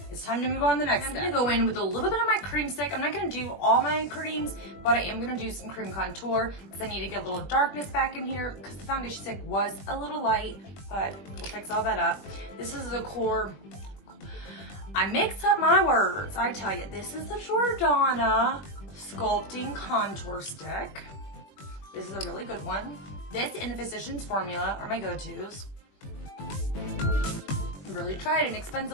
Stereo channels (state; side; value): late; right; 21 ms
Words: it's time to move on to the next step. I'm gonna go in with a little bit of my cream stick. I'm not gonna do all my creams, but I am gonna do some cream contour because I need to get a little darkness back in here because the foundation stick was a little light, but we'll fix all that up. This is the core. I mix up my words, I tell you. This is the Jordana Sculpting Contour Stick. This is a really good one. This and the Physicians Formula are my go-tos. Really tried an